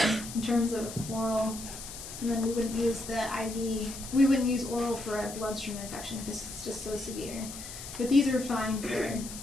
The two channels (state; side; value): noise; left; hiss, 11 dB below the sound